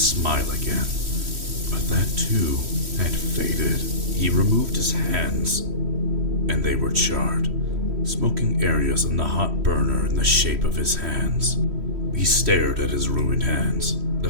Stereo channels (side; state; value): left; late; 3.1 ms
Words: again, but that too had faded. He removed his hands, and they were charred, smoking areas on the hot burner in the shape of his hands. He stared at his ruined hands, the